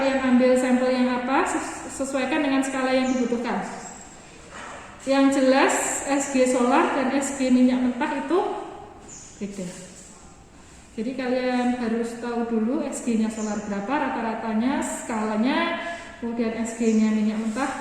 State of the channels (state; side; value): identical; both; correlation 1.00